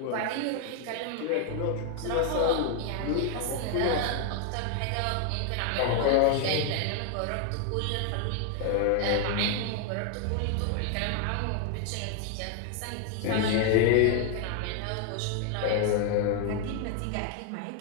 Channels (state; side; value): different; both; correlation 0.00